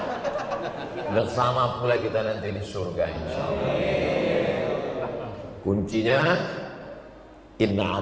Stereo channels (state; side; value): identical; both; correlation 1.00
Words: Bersama pula kita nanti di surga, insyaallah. Kuncinya